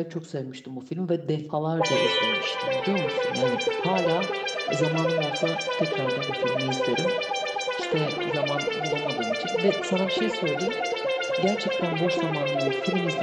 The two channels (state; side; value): identical; both; correlation 1.00